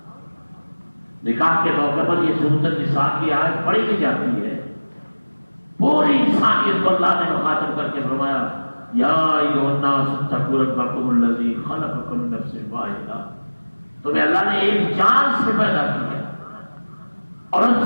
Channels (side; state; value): both; inverted; correlation -1.00